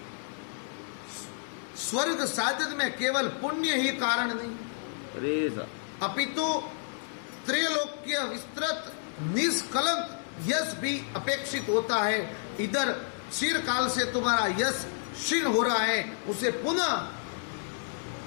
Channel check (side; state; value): right; silent; digital silence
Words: स्वर्ग साधन में केवल पुण्य ही कारण नहीं, अरे सा अपितु त्रैलोक्य विस्तृत निष्कलंक यश भी अपेक्षित होता है। इधर चिरकाल से तुम्हारा यश क्षीण हो रहा है, उसे पुनः